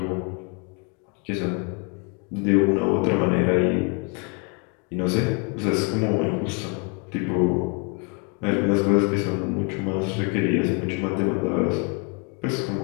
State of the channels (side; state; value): right; quieter; 35.8 dB